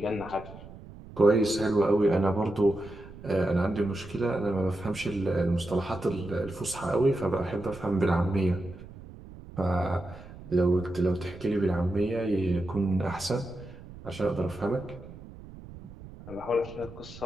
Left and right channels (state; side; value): noise; right; rumble, 16 dB below the sound